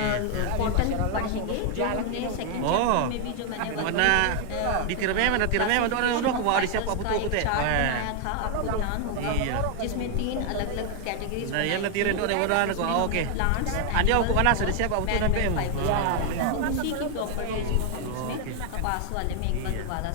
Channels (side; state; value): both; different; correlation 0.00